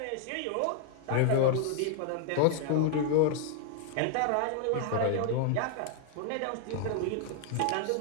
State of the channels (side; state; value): both; different; correlation 0.00